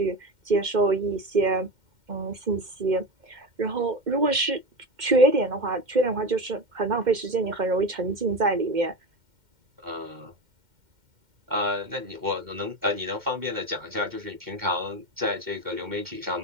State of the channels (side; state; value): left; late; 2.1 ms